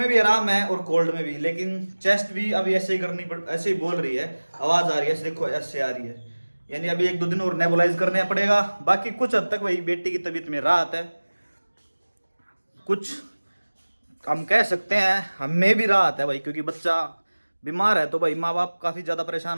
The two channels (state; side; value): inverted; both; correlation -1.00